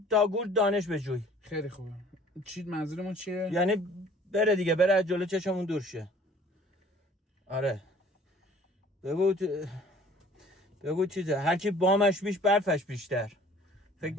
داگور دانش بجوی. خیلی خوبه. چی منظورمون چیه؟ یعنی بره دیگه، بره از جلو چشمون دور شه. آره بگو چیزه، هر کی بامش بیش برفش بیشتر. فکر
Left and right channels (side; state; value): both; normal; correlation 0.52